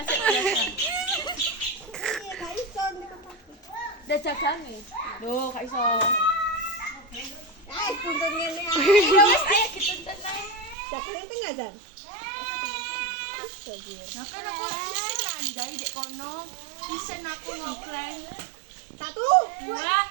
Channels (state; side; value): drops out; left; at 10.8 s